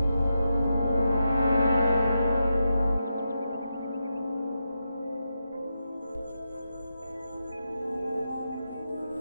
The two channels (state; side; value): inverted; both; correlation -0.87